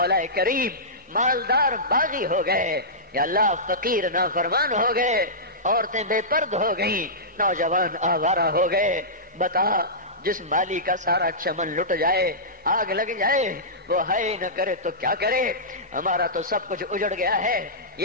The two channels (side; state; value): both; normal; correlation -0.17